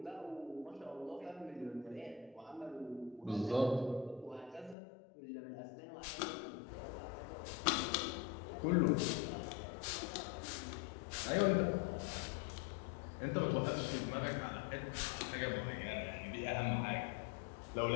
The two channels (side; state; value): right; drops out; at 4.8 s